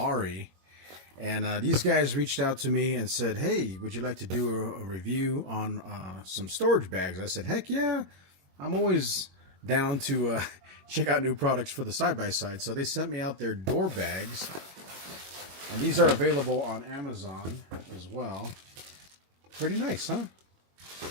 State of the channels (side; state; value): left; late; 22 ms